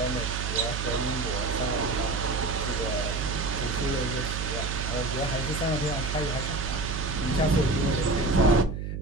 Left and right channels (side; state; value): right; noise; hum, 4 dB below the sound